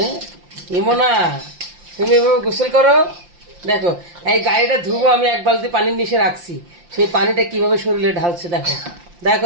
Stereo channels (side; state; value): left; late; 5.7 ms